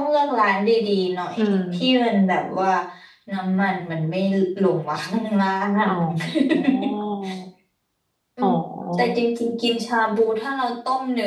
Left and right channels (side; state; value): both; identical; correlation 1.00